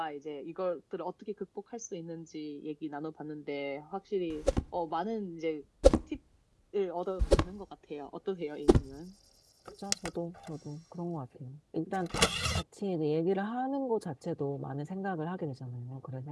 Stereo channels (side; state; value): both; identical; correlation 1.00